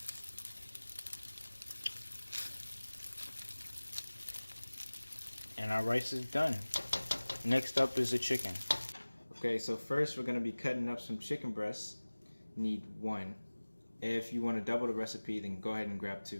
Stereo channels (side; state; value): both; inverted; correlation -1.00